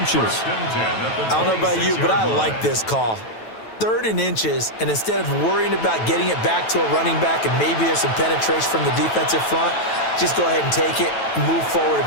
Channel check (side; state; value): right; late; 9.1 ms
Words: I don't know about you, but I like this call. 3rd and inches, and instead of worrying about getting it back to a running back and maybe there's some penetration from the defensive front, just go ahead and take it, move forward, and